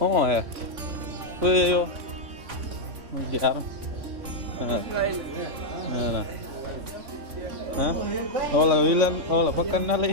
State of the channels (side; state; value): left; late; 3.5 ms